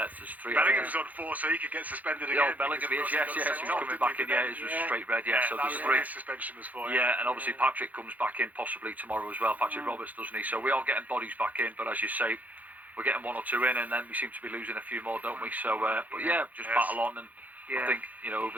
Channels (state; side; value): late; left; 0.079 ms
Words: There's 3. Bellingham's on 4, so he could get suspended again. Yeah, Bellingham is, yes. He's coming back in, it was straight red, so there's 3. Suspension was 4. Yeah, and obviously Patrick comes back in possibly tomorrow as well, Patrick Roberts, doesn't he? So we are getting bodies back in, but as you say, we're getting 1 or 2 in, and then we seem to be losing a few more, don't we? So, but just battle on, and I think,